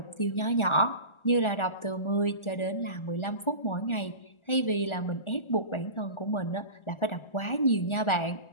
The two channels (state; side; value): late; right; 1.4 ms